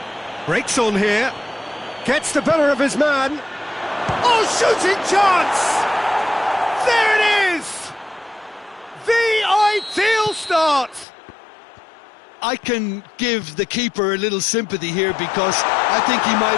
Breaks on here. Gets the better of his man. Oh, shooting chance! There it is! The ideal start! I can give the keeper a little sympathy here because I think he might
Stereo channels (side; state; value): right; drops out; at 11.1 s